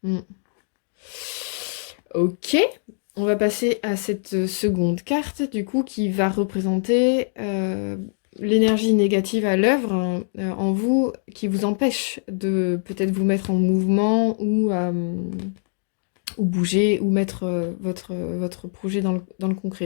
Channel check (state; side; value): silent; right; 63 dB below the other